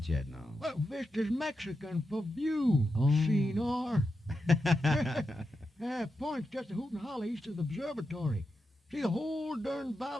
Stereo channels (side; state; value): both; normal; correlation 0.88